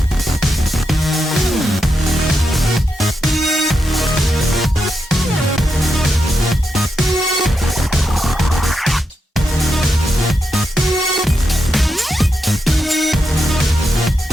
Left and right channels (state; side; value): normal; both; correlation 0.85